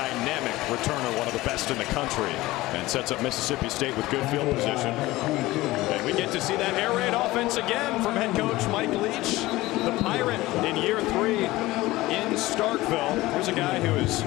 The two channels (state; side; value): quieter; right; 18.6 dB